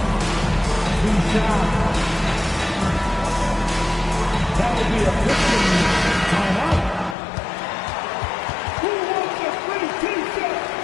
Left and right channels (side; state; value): right; drops out; at 7.2 s